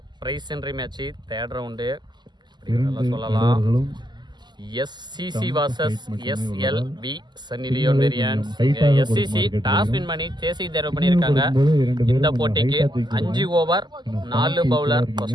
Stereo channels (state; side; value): late; left; 0.21 ms